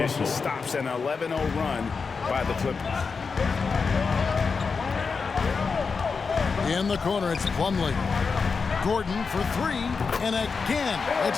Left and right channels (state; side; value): quieter; right; 5.0 dB